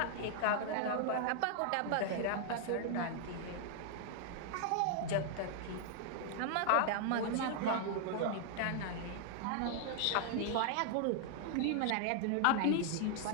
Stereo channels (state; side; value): different; both; correlation 0.00